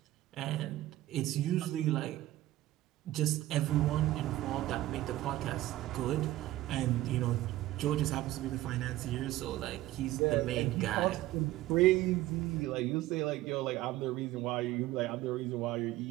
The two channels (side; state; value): left; quieter; 15.9 dB